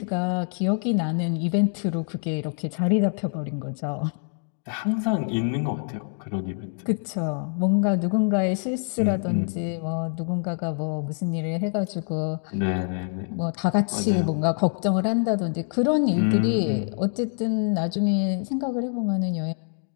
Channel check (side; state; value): right; silent; 60 dB below the other